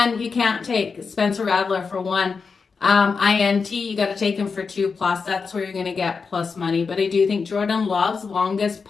you can't take Spencer Rattler for one INT. You got to take him for 2+. That's where you're going to get plus money. But I do think Jordan Love's longest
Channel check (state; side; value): quieter; right; 5.1 dB